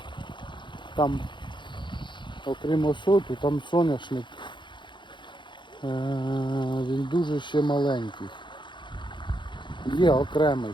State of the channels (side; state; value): right; late; 0.23 ms